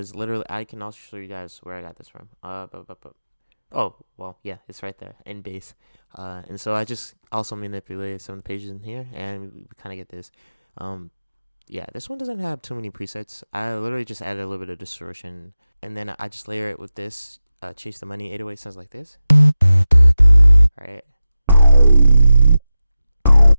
literally, I can also show you guys where I got this from. Oh, well, yeah, it's right there in base. And so I just also manipulated some of the pages in here, and we kind of get this. Yeah, this one doesn't have too many presets. I literally just added a little bit of distortion, and then I just layer it with this. Chase the Money 808 sounds like this, right?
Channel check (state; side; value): inverted; both; correlation -0.93